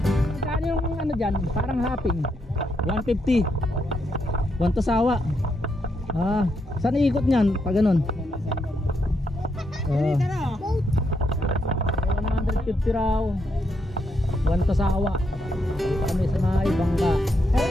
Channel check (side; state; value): both; normal; correlation 0.79